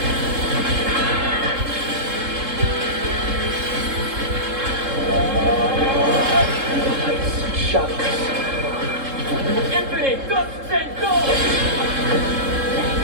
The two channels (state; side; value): late; left; 3.7 ms